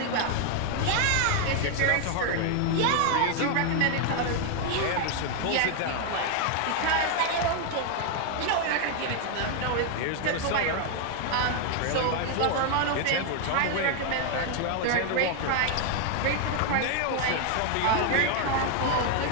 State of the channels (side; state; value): both; different; correlation 0.00